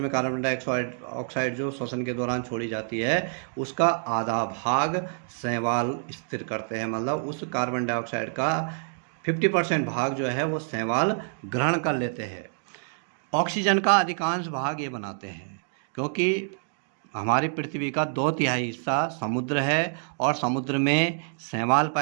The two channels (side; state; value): left; silent; digital silence